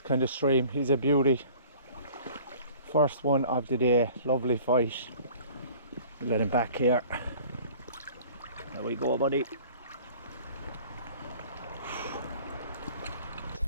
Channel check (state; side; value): inverted; both; correlation -0.48